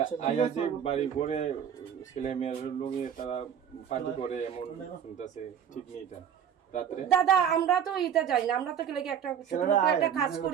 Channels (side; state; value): left; quieter; 8.6 dB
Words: আয়া যে বাড়ি করে ছেলে মেয়ের লোকে তারা পার্টি করে এমন শুনতেছে, ঠিক নেই এটা রাত্রে। দাদা আমরা তো এটা যাই না, আমরা তো লেগে একটা একটা কাজ